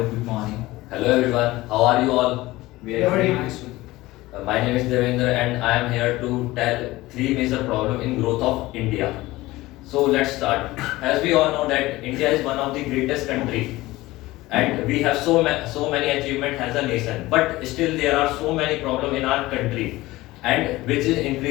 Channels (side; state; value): right; quieter; 18.7 dB